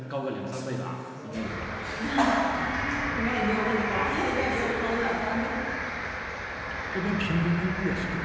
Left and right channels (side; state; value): both; identical; correlation 1.00